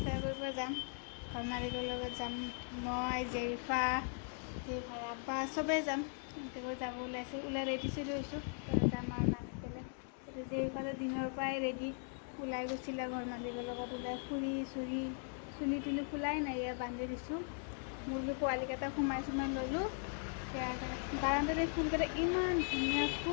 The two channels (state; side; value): silent; right; 52 dB below the other